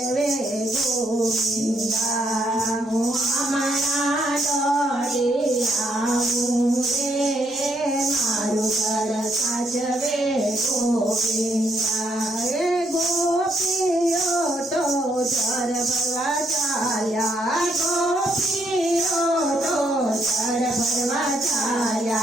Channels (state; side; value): normal; both; correlation 0.73